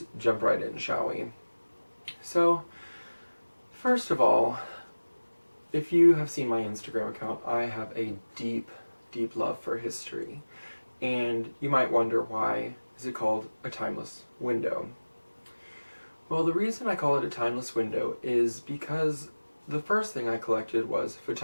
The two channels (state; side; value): inverted; both; correlation -1.00